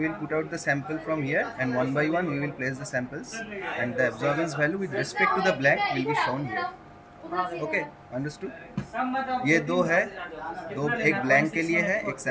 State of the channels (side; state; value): both; identical; correlation 1.00